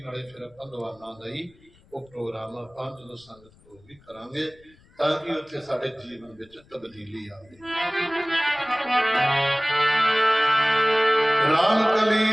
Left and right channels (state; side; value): noise; left; rumble, 29 dB below the sound